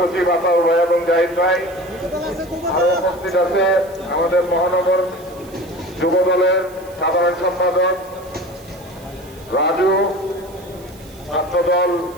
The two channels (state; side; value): noise; right; hiss, 23 dB below the sound